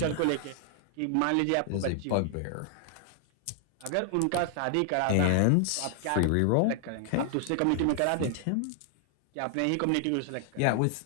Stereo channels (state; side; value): different; both; correlation 0.00